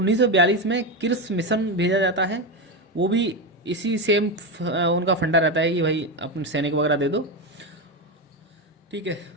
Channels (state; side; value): normal; both; correlation 0.14